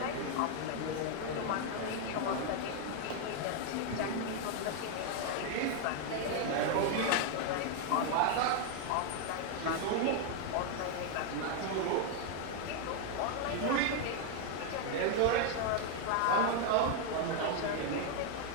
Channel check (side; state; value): both; different; correlation 0.00